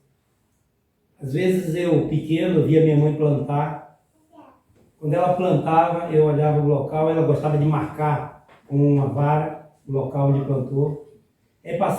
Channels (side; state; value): both; identical; correlation 1.00